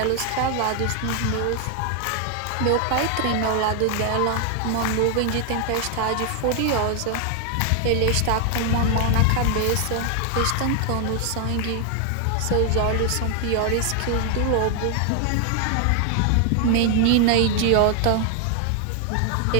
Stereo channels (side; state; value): both; different; correlation 0.00